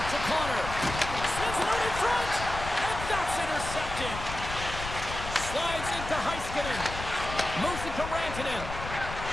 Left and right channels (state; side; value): noise; left; rumble, 8 dB below the sound